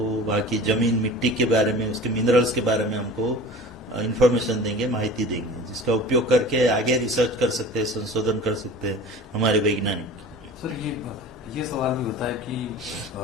वहाँ की जमीन, मिट्टी के बारे में, उसके मिनरल्स के बारे में हमको इंफॉर्मेशन देंगे, माहिती देंगे, जिसका उपयोग करके आगे रिसर्च कर सकते हैं, संशोधन कर सकते हैं हमारे वैज्ञानिक। सर ये सवाल भी होता है कि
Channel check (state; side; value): normal; both; correlation 0.39